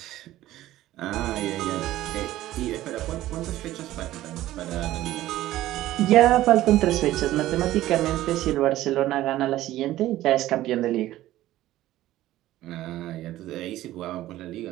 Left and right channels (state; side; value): quieter; left; 14.9 dB